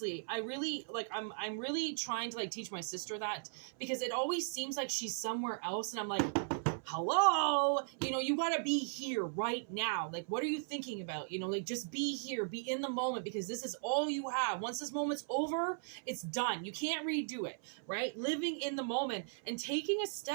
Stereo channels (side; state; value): left; silent; 53 dB below the other